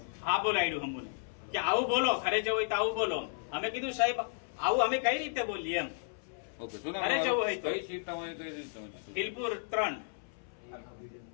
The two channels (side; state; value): right; silent; 55 dB below the other